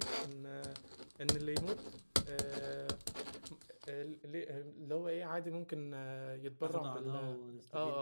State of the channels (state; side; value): inverted; both; correlation -1.00